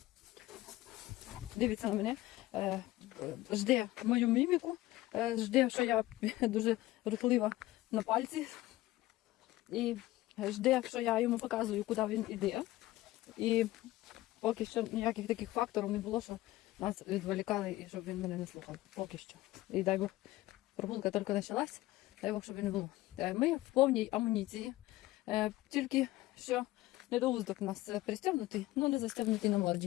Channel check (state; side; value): quieter; right; 17.1 dB